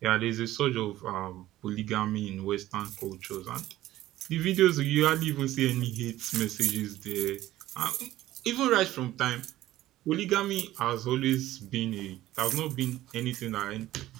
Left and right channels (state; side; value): quieter; left; 15.0 dB